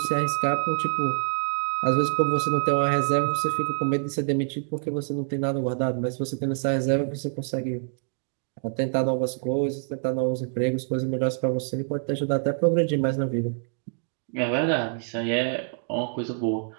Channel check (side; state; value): left; silent; digital silence